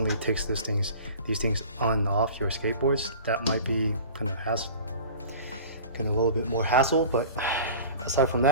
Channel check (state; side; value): inverted; both; correlation -0.40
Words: takes these things on and off your skateboards, that might be kind of a little bit more hassle, but aside from